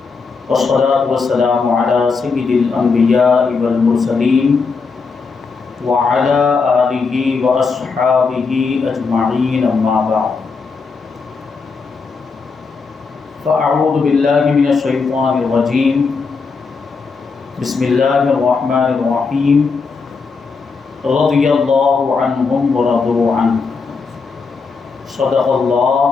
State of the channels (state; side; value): quieter; right; 4.8 dB